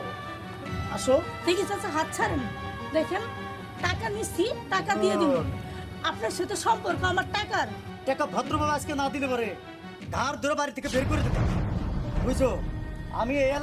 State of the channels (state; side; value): identical; both; correlation 1.00